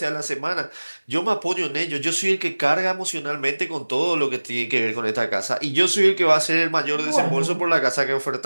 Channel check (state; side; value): inverted; both; correlation -1.00